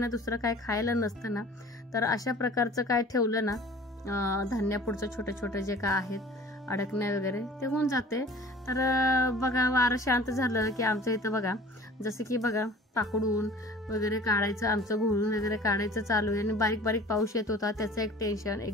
दुसरं काय खायला नसतं ना, तर अशा प्रकारचं काय ठेवलं ना धान्यापुढचं छोटे छोटे जे काय आहेत अडकण्या वगैरे ते होऊन जाते. तर बघा वारं शांत झालं की आमच्या इथं बघा जसं की बघा पाकडून वगैरे काढायचं, आमचं घोळून वगैरे काढायचं चालू आहे आणि बारीक बारीक पाऊस येत होता त्याचं एक टेन्शन.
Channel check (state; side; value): normal; both; correlation 0.45